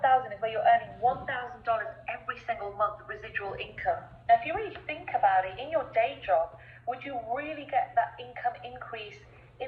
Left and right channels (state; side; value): identical; both; correlation 1.00